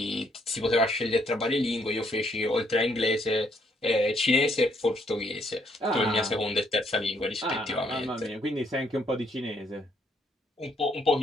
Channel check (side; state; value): both; normal; correlation 0.70